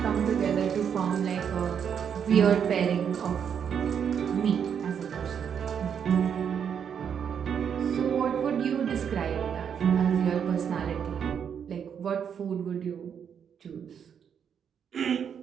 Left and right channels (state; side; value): quieter; left; 7.8 dB